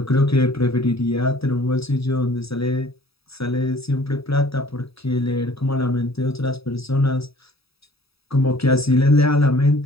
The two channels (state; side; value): late; right; 0.77 ms